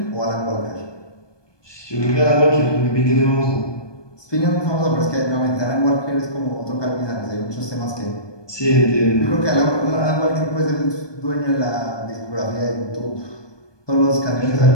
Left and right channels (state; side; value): late; right; 1.2 ms